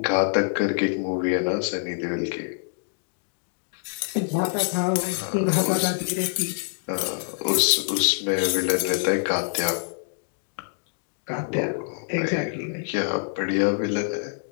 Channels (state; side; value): silent; right; 61 dB below the other